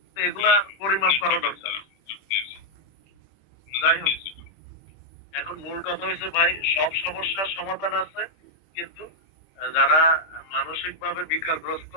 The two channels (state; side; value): late; right; 26 ms